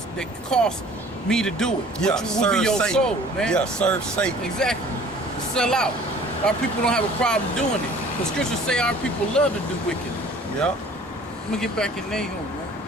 that costs me to do it. Yeah, which will be your Satan. soul, man. Yeah, serve Satan. Exactly. Sell out. Our people don't have a problem doing it. The scriptures say our people love to do wicked. Yeah. Let me get back in Nahum, man.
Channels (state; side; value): normal; both; correlation 0.50